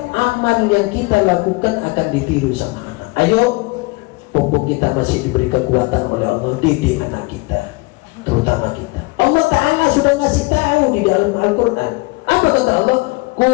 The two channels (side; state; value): right; quieter; 25.5 dB